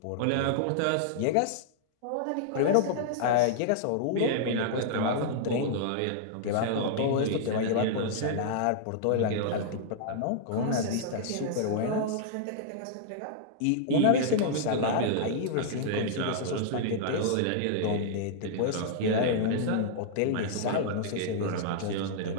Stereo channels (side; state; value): both; different; correlation -0.01